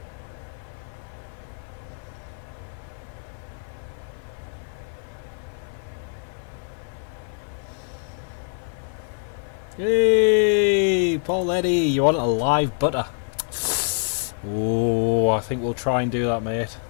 Hey, Paul Eddy, you want a live butter? Oh, I think we'll try and do that, mate.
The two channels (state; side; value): silent; right; 56 dB below the other